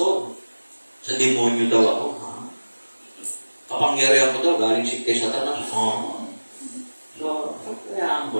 sa demonyo daw ako. Kapangyarihan ko daw, galing si kay Satanas. So, kayaan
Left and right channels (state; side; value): inverted; both; correlation -1.00